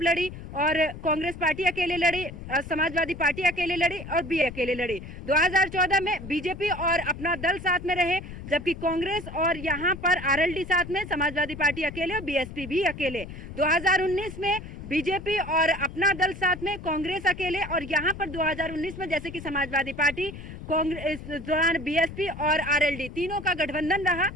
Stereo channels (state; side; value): noise; left; rumble, 12 dB below the sound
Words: लड़ी, और कांग्रेस पार्टी अकेले लड़ी, समाजवादी पार्टी अकेले लड़ी, और बी अकेले लड़ी। 2014 में बीजेपी और अपना दल साथ में रहे, जबकि कांग्रेस और यहाँ पर आरएलडी साथ में, समाजवादी पार्टी अकेले और बीएसपी भी अकेले। 2019 में बीजेपी और अपना दल साथ में, कांग्रेस अकेले, और यहाँ पर 2019 में जैसे कि समाजवादी पार्टी, कांग्रेस दौरान बीएसपी और आरएलडी तीनों का गठबंधन रहा।